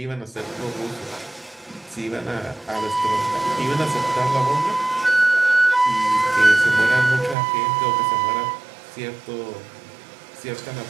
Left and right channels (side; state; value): left; drops out; at 7.4 s